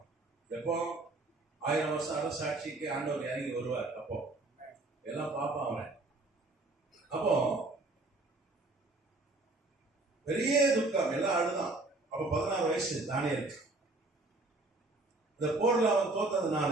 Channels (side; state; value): left; quieter; 3.0 dB